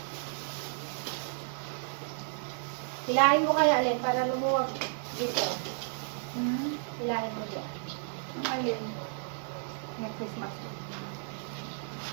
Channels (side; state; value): left; silent; digital silence